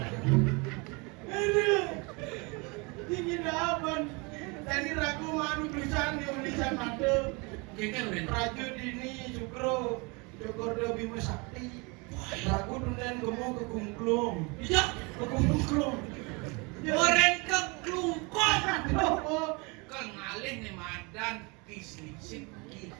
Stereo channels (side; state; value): left; quieter; 29.0 dB